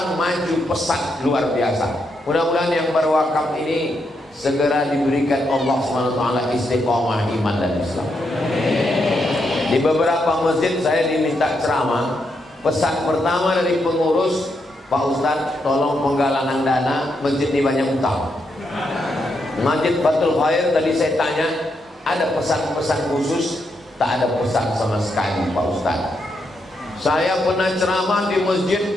maju pesat luar biasa. Mudah-mudahan yang berwakaf ini segera diberikan Allah SWT istiqomah iman dan Islam. Di beberapa masjid saya diminta ceramah. Pesan pertama dari pengurus, Pak Ustadz tolong penggalangan dana, masjid ini banyak utang. Masjid Fathul Khair tadi saya tanya, ada pesan-pesan khusus? Tak ada pesan sama sekali Pak Ustadz. Saya pernah ceramah di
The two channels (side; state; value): both; normal; correlation 0.81